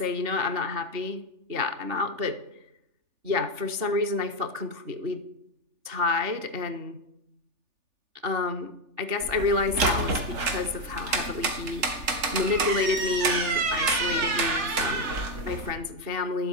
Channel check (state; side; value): late; left; 3.4 ms